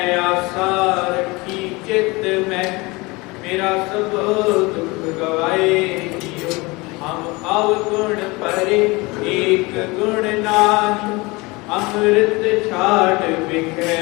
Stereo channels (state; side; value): quieter; right; 24.3 dB